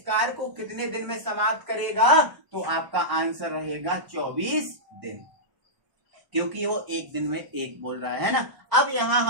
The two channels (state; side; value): late; left; 1.0 ms